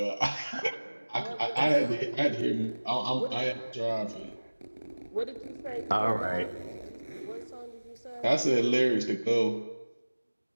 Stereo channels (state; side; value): inverted; both; correlation -1.00